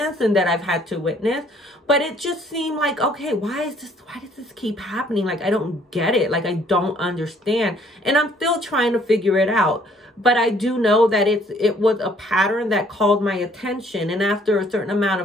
and that I've had to witness. But it just seemed like, okay, why does this keep happening? Like, I don't get it. Like, I don't understand. And I'm still trying to figure it out. But I do know that it was a pattern that called my attention. And after a certain amount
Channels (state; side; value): normal; both; correlation 0.61